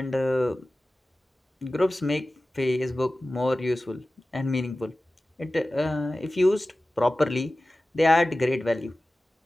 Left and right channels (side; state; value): both; normal; correlation 0.96